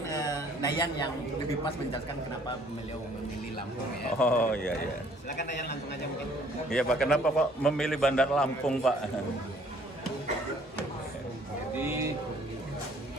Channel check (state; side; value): normal; both; correlation 0.59